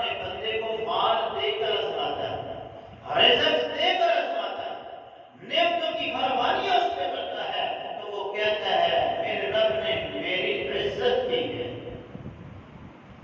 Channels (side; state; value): both; identical; correlation 1.00